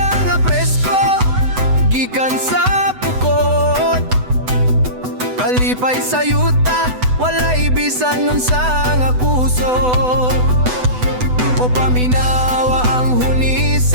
nga presko, gikan sa pukot. Kalipay sa yuta, walay bisan nun sa nga kusot. O paminawa ang huni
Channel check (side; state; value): left; late; 8.0 ms